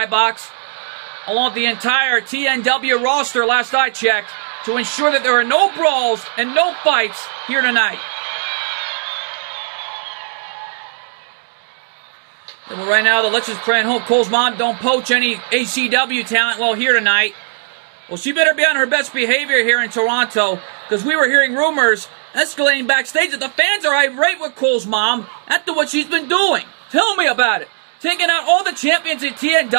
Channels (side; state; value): left; silent; digital silence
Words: along with the entire TNW roster last I checked, to ensure that there are no brawls and no fights here tonight. Well, right now, the Lexus praying, hope Cole's mom don't poach any ACW talent while here tonight. Well, she better be on her best behavior here in Toronto, because we were hearing rumors escalating backstage that the fans are irate with Cole's mom after what she's been doing. Tell me about it. Taking out all the champions in